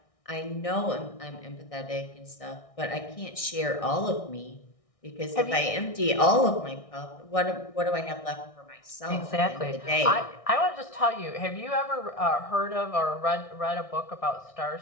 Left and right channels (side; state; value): right; late; 1.6 ms